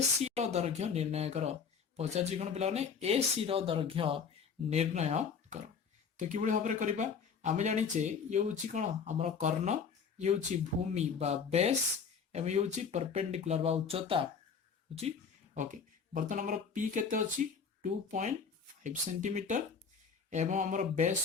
रो दैर्घ्य निर्णय करो पचारछि कोन पिला ने एसी रो दैर्घ्य निर्णय करो। तो किबळे भाबरे करबा आमे जानिचे ये होची कोन हमर कर्ण ये होची भूमि बा बेस एवं ये होची परपेंडिकुलर बा उच्चता होची ओके। बर्तन हमर पी केते अछि 2.5 सेंटीमीटर एवं हमर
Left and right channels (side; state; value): right; quieter; 6.0 dB